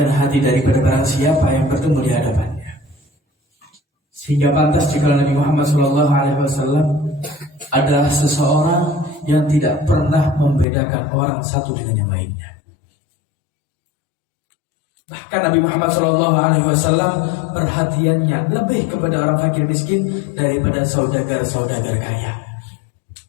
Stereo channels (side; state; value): right; drops out; at 10.7 s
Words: hati daripada barang siapa yang bertemu di hadapannya. Sehingga pantas jika Nabi Muhammad SAW adalah seseorang yang tidak pernah membedakan orang satu dengan yang lainnya. Bahkan Nabi Muhammad SAW perhatiannya lebih kepada orang fakir miskin daripada saudagar-saudagar kaya.